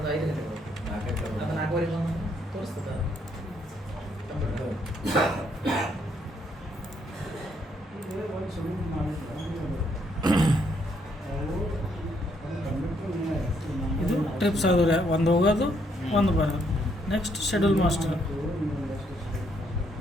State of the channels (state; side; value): normal; both; correlation 0.72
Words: 5 ಗಂಟೆ ಬರುತ್ತೆ. ಅದು 4:15 ಬಂದು ತೋರಿಸ್ತದೆ. ಇದು ಟ್ರಿಪ್ಸ್ ಆದ್ರೆ ಒಂದು ಹೋಗೋದು ಒಂದು ಬರೋದು. Next schedule master,